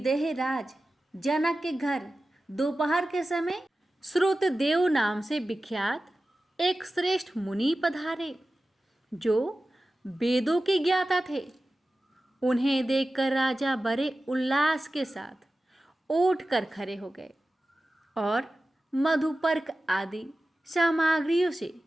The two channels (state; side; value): normal; both; correlation 0.95